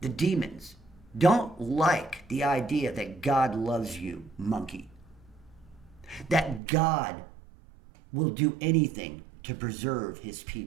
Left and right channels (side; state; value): left; drops out; at 6.6 s